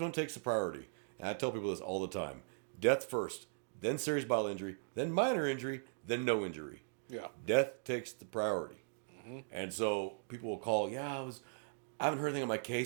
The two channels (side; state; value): left; silent; digital silence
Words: takes the priority? And I tell people this all the time. Death first, then serious bodily injury, then minor injury, then no injury. Yeah. Death takes the priority. And so people will call, I haven't heard anything on my